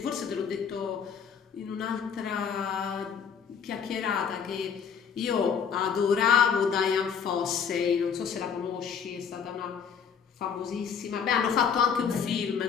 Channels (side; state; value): right; quieter; 7.0 dB